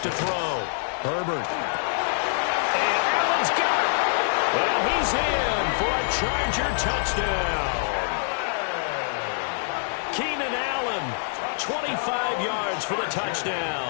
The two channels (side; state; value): right; silent; 61 dB below the other